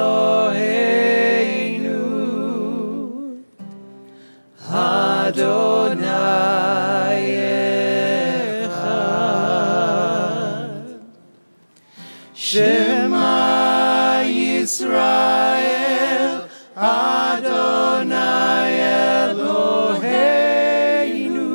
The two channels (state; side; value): inverted; both; correlation -1.00